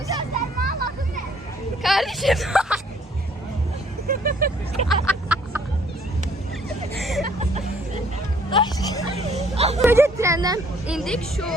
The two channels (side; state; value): both; normal; correlation 0.61